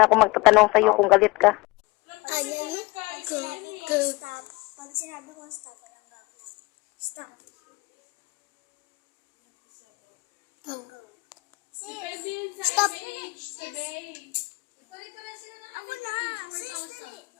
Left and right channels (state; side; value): quieter; right; 24.0 dB